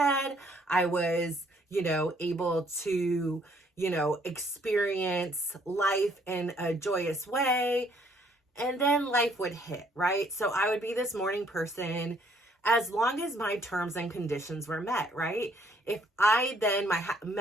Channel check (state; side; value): normal; both; correlation 0.65